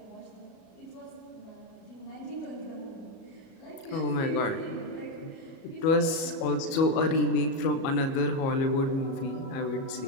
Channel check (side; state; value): right; late; 37 ms